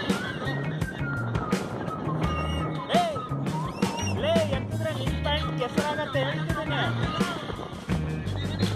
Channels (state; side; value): identical; both; correlation 1.00